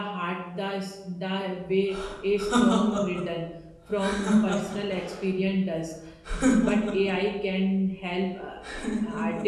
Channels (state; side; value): identical; both; correlation 1.00